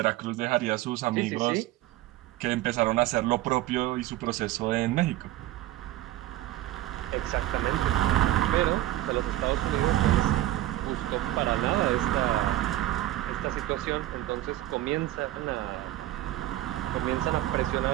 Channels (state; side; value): quieter; left; 15.2 dB